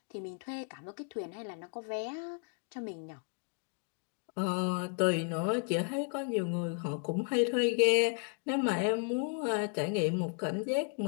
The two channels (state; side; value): quieter; right; 38.3 dB